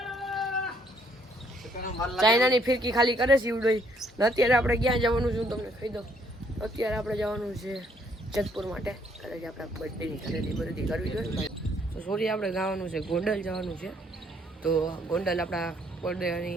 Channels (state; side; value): normal; both; correlation 0.67